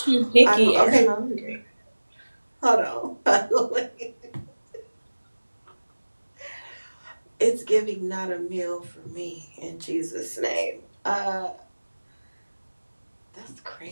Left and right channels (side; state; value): both; inverted; correlation -1.00